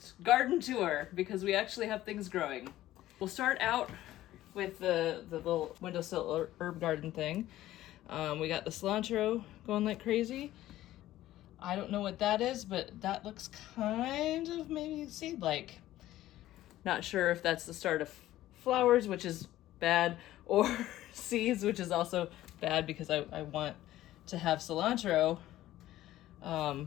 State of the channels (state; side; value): quieter; right; 14.6 dB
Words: garden tour because we actually have things growing. We'll start out with the little windowsill herb garden thing. We got the cilantro going like crazy. I don't know what that is, but that looks kind of maybe seed-like. Not sure if that's the start of flowers, which is bad, or seeds, which is also bad because I want to have cilantro